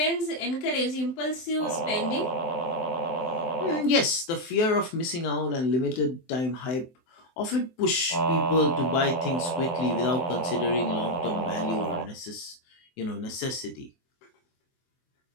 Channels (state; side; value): late; right; 23 ms